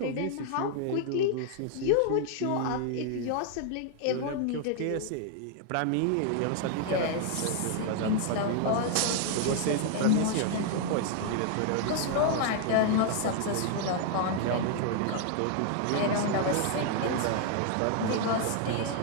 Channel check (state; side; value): different; both; correlation 0.00